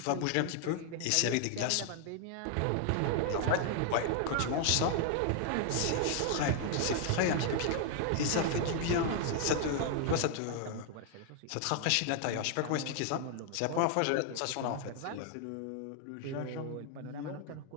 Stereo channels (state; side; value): different; both; correlation 0.00